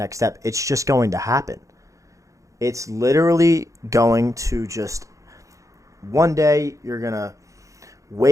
step. It's just going to happen. It's literally going to just, one day you're going to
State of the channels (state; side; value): late; left; 0.15 ms